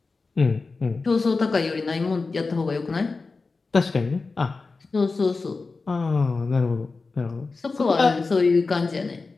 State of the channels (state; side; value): quieter; right; 4.0 dB